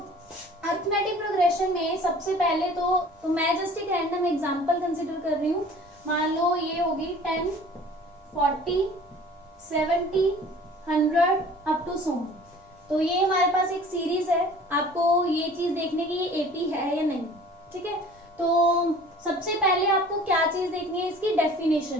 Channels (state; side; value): normal; both; correlation 0.47